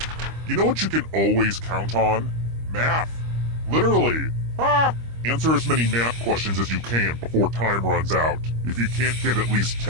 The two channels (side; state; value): left; late; 25 ms